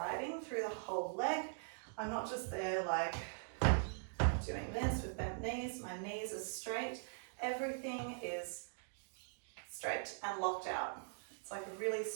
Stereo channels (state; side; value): silent; left; digital silence